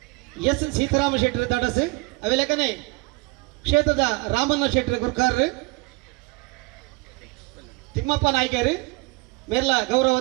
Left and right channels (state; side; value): quieter; left; 26.0 dB